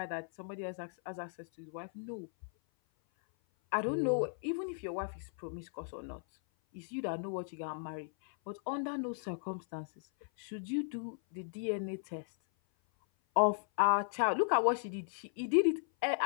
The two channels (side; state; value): right; silent; 54 dB below the other